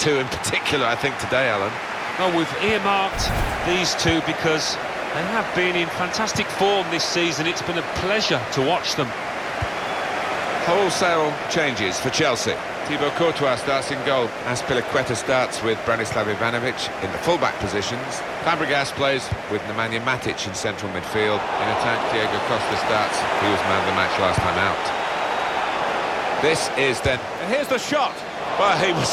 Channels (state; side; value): identical; both; correlation 1.00